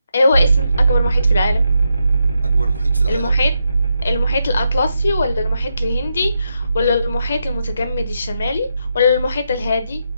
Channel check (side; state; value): both; inverted; correlation -0.83